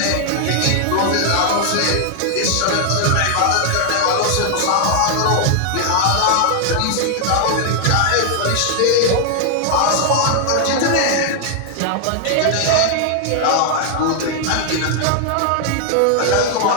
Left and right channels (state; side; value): different; both; correlation 0.00